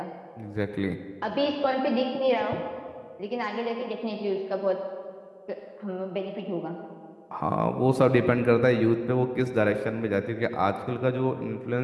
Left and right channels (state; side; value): identical; both; correlation 1.00